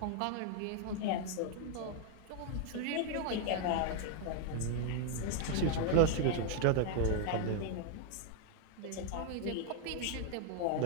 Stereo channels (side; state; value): both; different; correlation 0.00